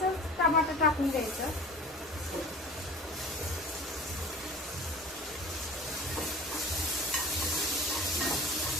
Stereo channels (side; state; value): both; normal; correlation 0.39